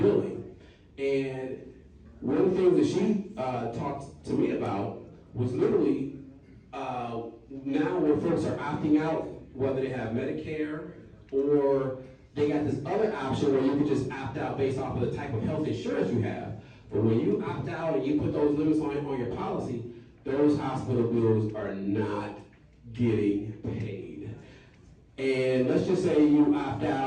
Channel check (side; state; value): both; identical; correlation 1.00